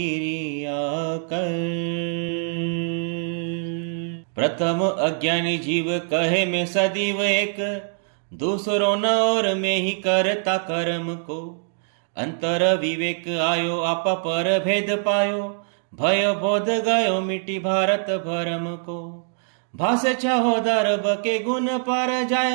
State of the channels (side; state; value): left; silent; digital silence